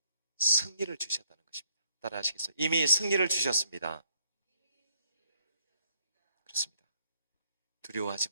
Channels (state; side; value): inverted; both; correlation -0.73